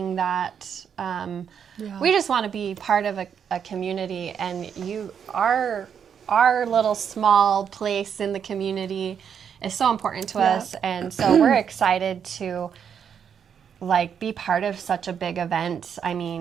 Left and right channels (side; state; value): left; quieter; 7.7 dB